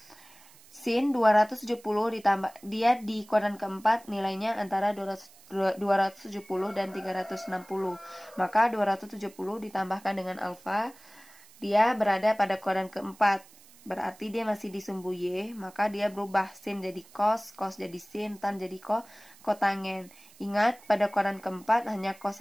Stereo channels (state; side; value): noise; right; hiss, 24 dB below the sound